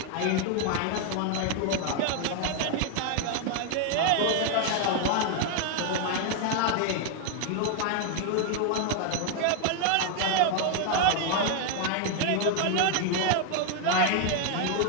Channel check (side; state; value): both; different; correlation 0.01